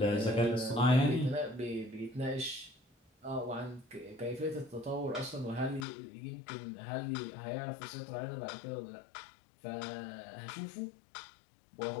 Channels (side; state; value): right; drops out; at 5.9 s